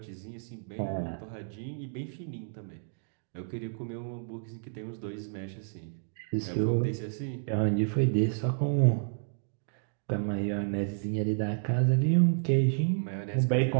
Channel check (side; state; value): left; silent; digital silence